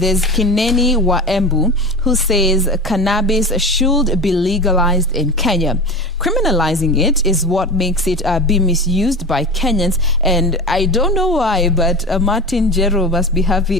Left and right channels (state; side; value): normal; both; correlation 0.28